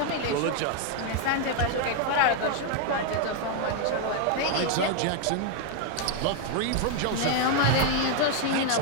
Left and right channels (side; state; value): both; different; correlation 0.00